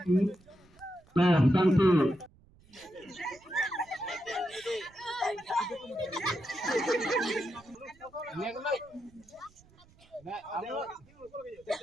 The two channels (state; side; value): noise; right; rumble, 28 dB below the sound